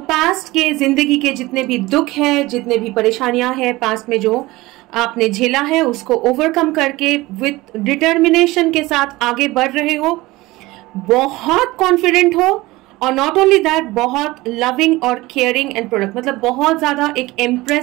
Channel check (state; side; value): quieter; left; 20.0 dB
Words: के जिंदगी के जितने भी दुख है, जितने भी परेशानियां हैं पास्ट में जो आपने झेला है, उसको ओवरकम करके विथ डिटर्मिनेशन के साथ आगे बढ़ रहे हो, बहुत कॉन्फिडेंट हो, और नॉट ओनली दैट बहुत लविंग और केयरिंग एंड प्रोडक्ट, मतलब बहुत ज्यादा एक